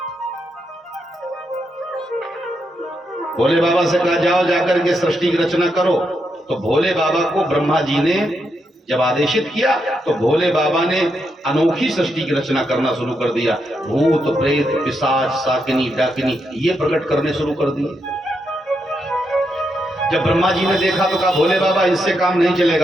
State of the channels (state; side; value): normal; both; correlation 0.82